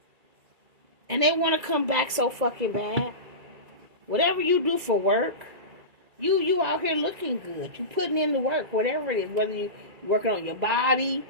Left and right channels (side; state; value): left; late; 2.3 ms